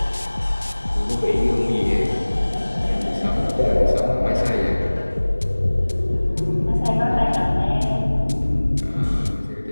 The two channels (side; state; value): both; inverted; correlation -1.00